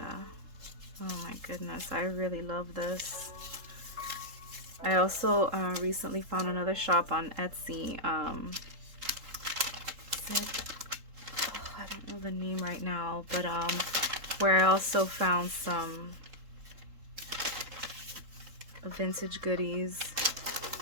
Oh my goodness, I really love this. I also recently found another shop on Etsy. I don't know the name right now, but where I also found some vintage goodies.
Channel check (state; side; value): late; left; 3.7 ms